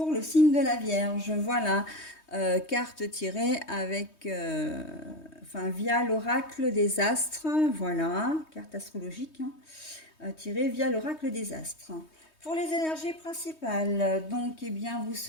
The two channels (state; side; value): late; right; 3.2 ms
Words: le signe de la Vierge. Voilà, carte tirée avec, via l'oracle des astres. Voilà, carte astrologique tirée via l'oracle des astres. Pour les énergies principales, donc, eh bien, vous